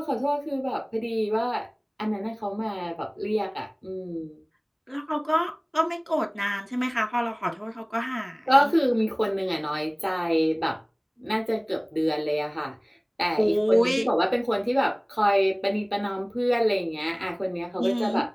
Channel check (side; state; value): both; identical; correlation 1.00